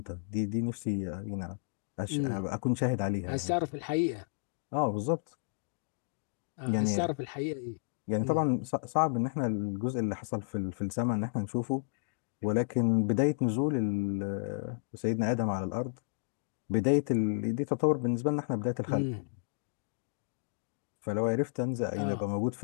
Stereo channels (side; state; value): right; silent; digital silence